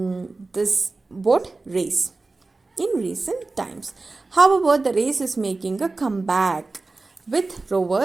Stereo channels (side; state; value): left; quieter; 3.5 dB